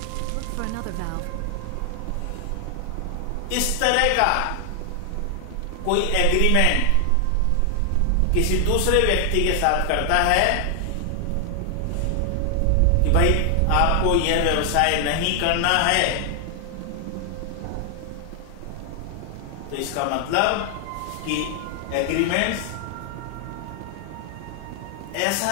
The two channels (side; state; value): both; different; correlation 0.00